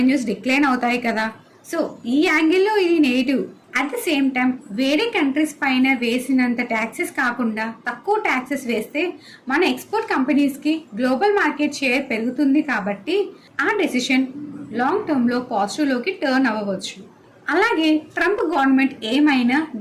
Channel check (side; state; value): both; identical; correlation 1.00